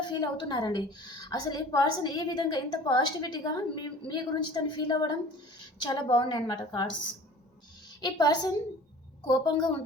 ఫీల్ అవుతున్నారండి. అసలు ఈ పర్సన్ ఈ విధంగా ఇంత పాజిటివిటీగా మీ గురించి తను ఫీల్ అవ్వడం చాలా బాగున్నాయి అన్నమాట కార్డ్స్. ఈ పర్సన్ కోపంగా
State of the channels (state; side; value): normal; both; correlation 0.44